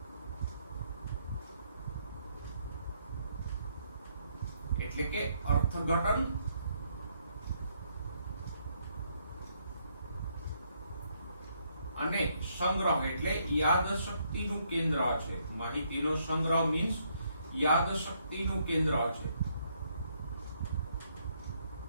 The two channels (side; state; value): both; inverted; correlation -0.73